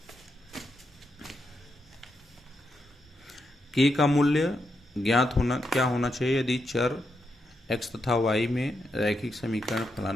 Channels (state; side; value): normal; both; correlation 0.83